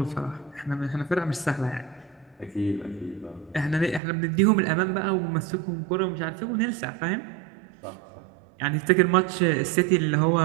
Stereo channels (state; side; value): drops out; left; at 4.0 s